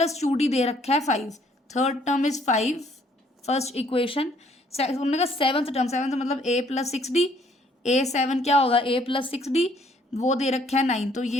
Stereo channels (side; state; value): both; normal; correlation 0.63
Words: 2D दे रखा है 5, third term is 5, first equation. उन्होंने कहा सेवन्थ टर्म, सेवन्थ मतलब A + 6D, A7 क्या होगा A + 6D, वो दे रखा है 9, तो